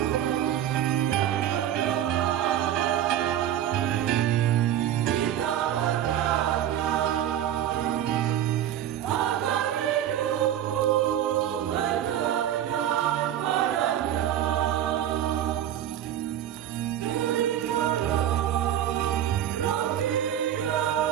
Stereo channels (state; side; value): quieter; left; 11.1 dB